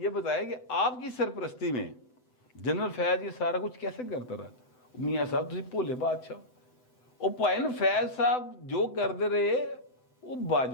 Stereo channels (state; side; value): late; right; 7.9 ms